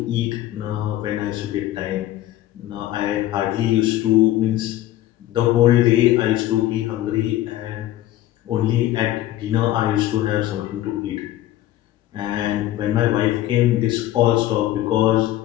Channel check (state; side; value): quieter; right; 14.2 dB